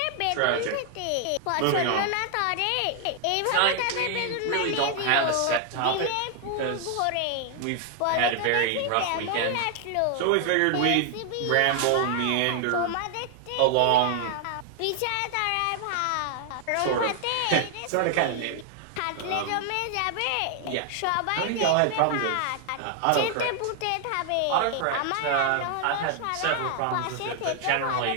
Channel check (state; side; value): different; both; correlation 0.00